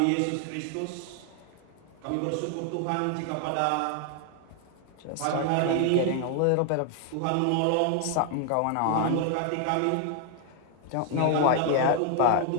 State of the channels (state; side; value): different; both; correlation 0.00